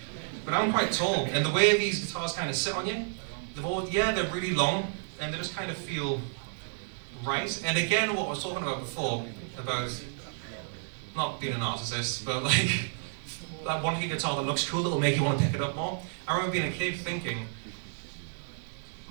But I'm quite tall, and the way these guitars kind of sit on you, they're really long, and they just kind of feel right. And again, what I was talking about before, about not being a narcissist, but like wanting a guitar that looks cool, that will make you want to pick it up more. I remember being a kid thinking,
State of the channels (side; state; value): left; silent; 57 dB below the other